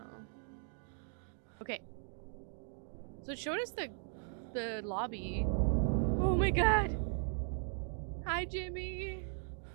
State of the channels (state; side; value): silent; left; 52 dB below the other